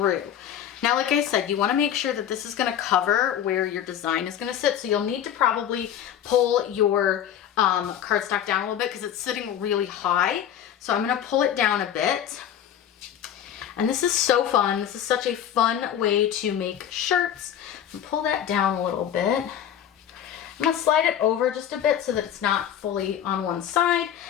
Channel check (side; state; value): right; quieter; 10.0 dB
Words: Now, like I said, you want to make sure that this is going to cover where your design is going to sit. So you'll need to probably pull your cardstock down a little bit because it's sitting really high. So I'm going to pull it down a bit. And this is so fun. This is such a fun way to make shirts. Pull that down a little bit. I'm going to slide it over just a bit so that it's not fully on one side.